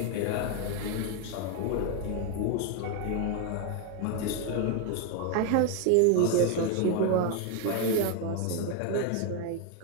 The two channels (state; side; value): different; both; correlation 0.01